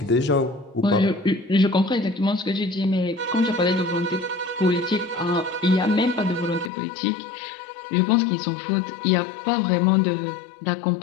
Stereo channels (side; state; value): right; drops out; at 6.7 s